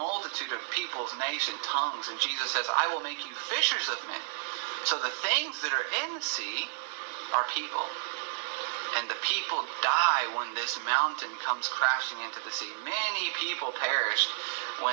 of peoples, nation, tongues, and Jesus says, I will make you fishers of men. So the things that are in the sea are people. And the people die when this mountain comes crashing into the sea. Many people perished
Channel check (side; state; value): left; silent; 57 dB below the other